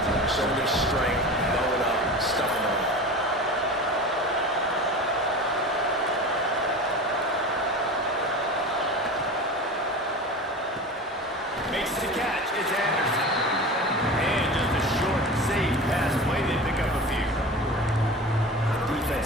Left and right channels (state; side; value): normal; both; correlation 0.32